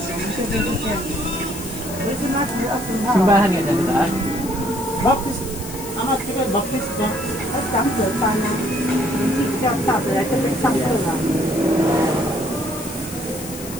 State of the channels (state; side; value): noise; left; hiss, 12 dB below the sound